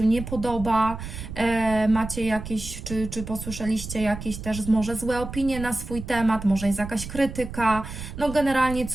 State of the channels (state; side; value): noise; right; rumble, 10 dB below the sound